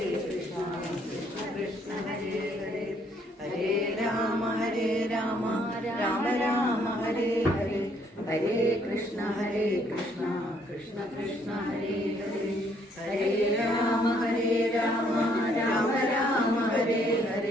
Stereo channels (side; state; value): both; normal; correlation 0.67